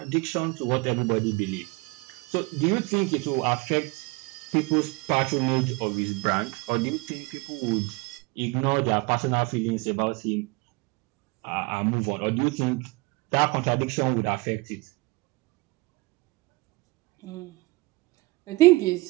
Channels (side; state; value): left; quieter; 23.1 dB